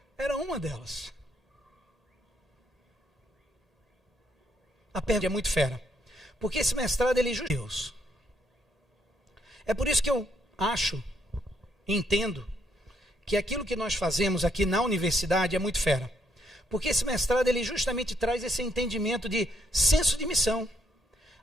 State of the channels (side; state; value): both; normal; correlation 0.73